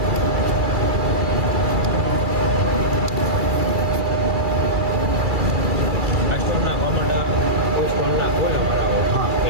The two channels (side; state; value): left; late; 2.3 ms